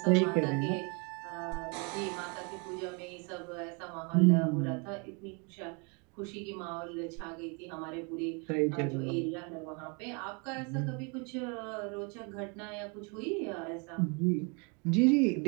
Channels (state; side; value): quieter; left; 33.6 dB